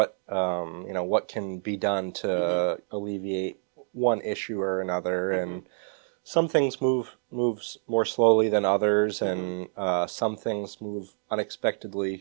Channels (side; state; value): left; silent; digital silence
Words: you know, what can be done to alleviate one issue or another. And some things move more slowly than others, and some things move